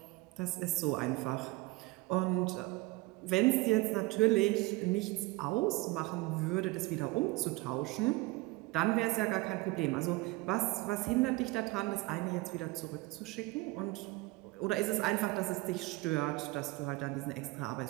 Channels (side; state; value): left; quieter; 21.9 dB